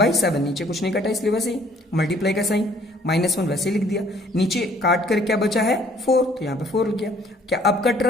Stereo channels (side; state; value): both; normal; correlation 0.59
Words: नीचे कुछ नहीं कटा इसलिए वैसे ही मल्टीप्लाई का साइन -1 वैसे लिख दिया। नीचे काट कर क्या बचा है? 4, तो यहाँ पे 4 लिख गया। क्या अब कट